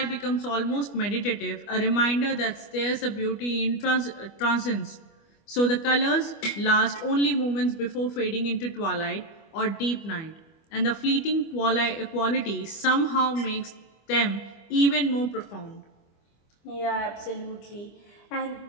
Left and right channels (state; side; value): late; right; 25 ms